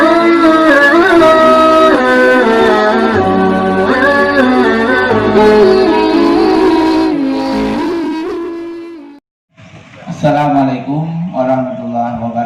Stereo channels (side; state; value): both; identical; correlation 1.00